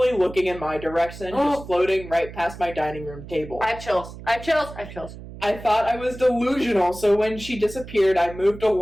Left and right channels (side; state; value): right; noise; hum, 14 dB below the sound